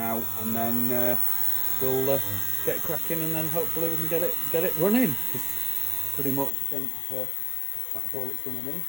and then we'll get cracking, and then hopefully we can get it running. Because pretty much I think that's all it's going to need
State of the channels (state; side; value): drops out; right; at 6.5 s